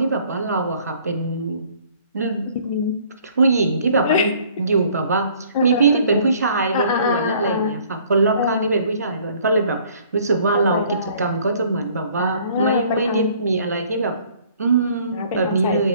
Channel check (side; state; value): both; inverted; correlation -0.57